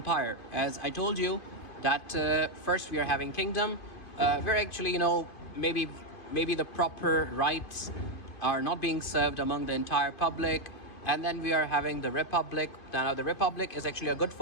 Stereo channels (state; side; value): late; right; 2.5 ms